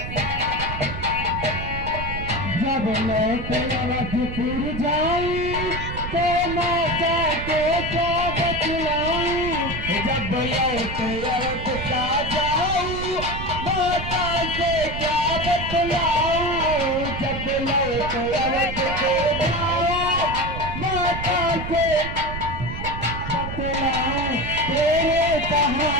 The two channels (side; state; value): right; noise; rumble, 7 dB below the sound